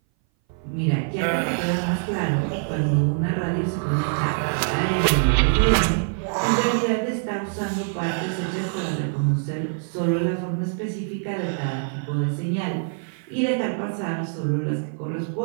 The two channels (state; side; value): silent; left; 58 dB below the other